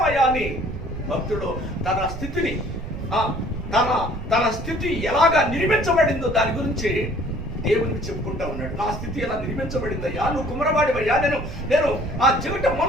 అని భక్తుడు తన స్థితిని, తన స్థితి ఎలాగా నిర్మించబడిందో దాని గురించి దేవునికి చెప్పుకుంటా ఉన్నాడు. నా స్థితి ఎలా నిర్మించబడిందయ్యా, నువ్వు కుమ్మరవాడివయ్యా, నేను ఆ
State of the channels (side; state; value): right; noise; rumble, 8 dB below the sound